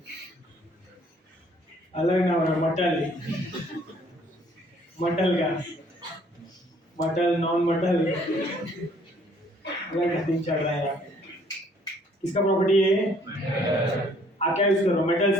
अलग ना होना, मटल। मटल का मटल, नॉन मटल अलग दिन चल रहा है यार। किसका प्रॉपर्टी है? आप क्या यूज कर रहे हो? मेटल्स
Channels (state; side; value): normal; both; correlation 0.61